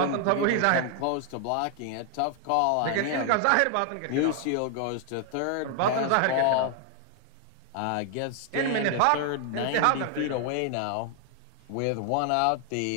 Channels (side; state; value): both; different; correlation 0.00